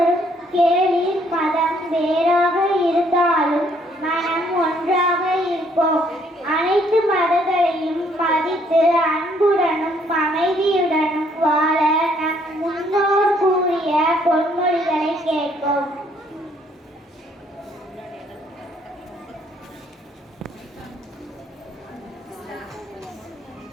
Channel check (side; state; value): both; normal; correlation 0.66